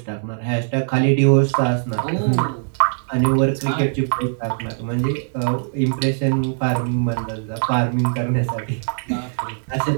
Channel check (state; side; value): silent; left; digital silence